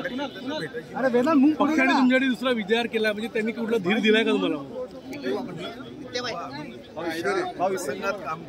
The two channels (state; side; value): identical; both; correlation 1.00